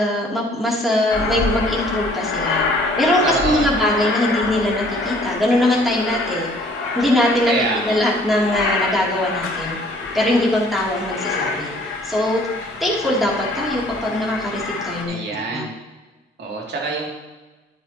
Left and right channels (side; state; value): both; normal; correlation 0.57